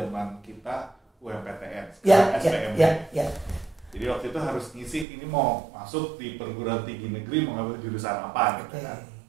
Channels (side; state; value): left; drops out; at 5.1 s